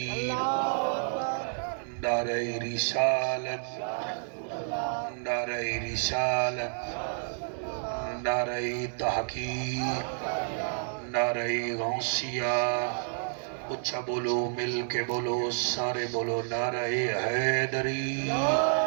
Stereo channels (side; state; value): left; silent; 58 dB below the other